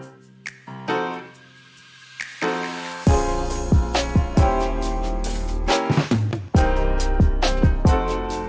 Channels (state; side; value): identical; both; correlation 1.00